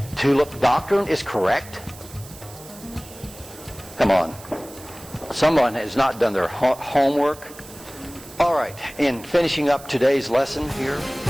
tulip doctrine is correct? Come on. Someone has not done their homework. All right, in finishing up today's lesson here.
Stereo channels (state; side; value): noise; right; hiss, 18 dB below the sound